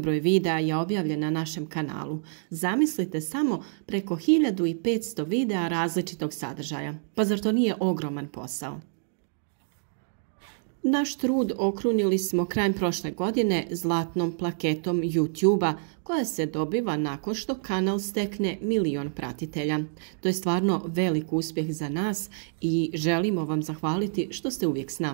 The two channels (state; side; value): silent; left; digital silence